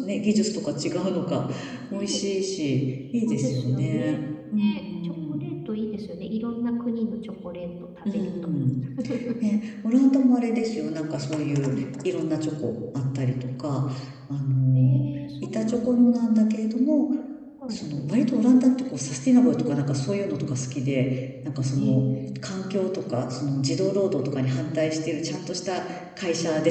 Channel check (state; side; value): identical; both; correlation 1.00